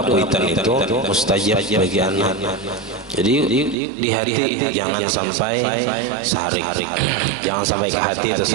kuitan itu mustajab bagi anak. Jadi di hati jangan sampai sarik, jangan sampai ke hati itu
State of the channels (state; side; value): drops out; left; at 3.8 s